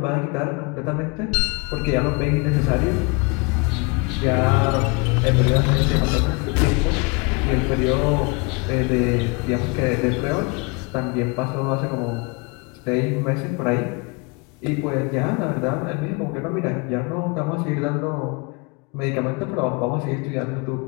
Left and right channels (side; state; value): right; quieter; 30.0 dB